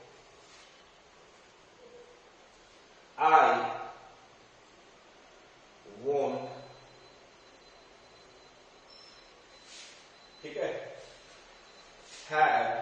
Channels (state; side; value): identical; both; correlation 1.00